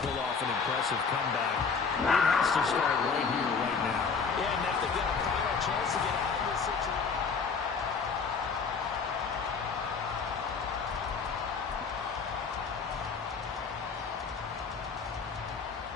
off an impressive comeback, it has to start right here, right now. Yeah, and if they've got a final chance to get out of this situation.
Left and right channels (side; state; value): right; quieter; 5.4 dB